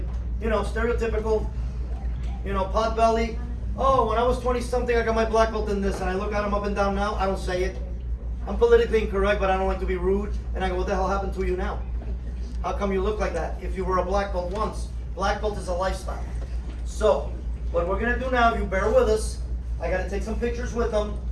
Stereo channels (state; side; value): identical; both; correlation 1.00